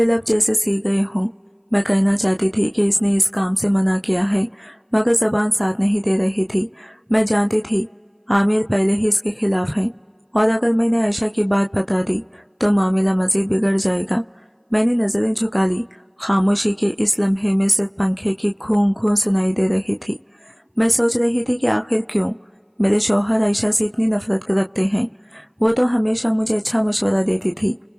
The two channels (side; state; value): both; identical; correlation 1.00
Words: लब जैसे सी गए हों। मैं कहना चाहती थी कि इसने इस काम से मना किया है, मगर जबान साथ नहीं दे रही थी। मैं जानती थी आमिर पहले ही इसके खिलाफ है, और अगर मैंने आयशा की बात बता दी तो मामला मजीद बिगड़ जाएगा। मैंने नजरें झुका ली। खामोशी के इस लम्हे में सिर्फ पंखे की घूं घूं सुनाई दे रही थी। मैं सोच रही थी कि आखिर क्यों मेरे शौहर आयशा से इतनी नफरत रखते हैं। वो तो हमेशा मुझे अच्छा मशवरा देती थी,